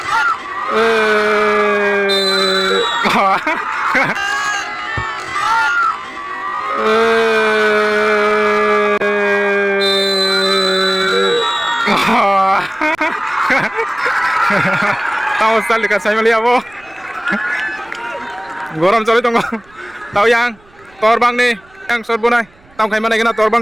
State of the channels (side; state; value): right; noise; rumble, 29 dB below the sound